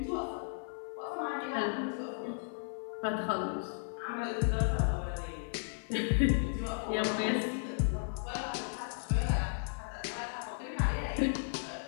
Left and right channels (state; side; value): silent; right; 54 dB below the other